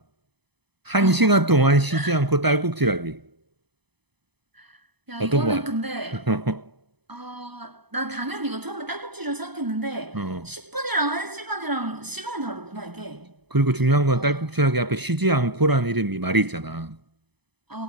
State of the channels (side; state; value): left; late; 0.99 ms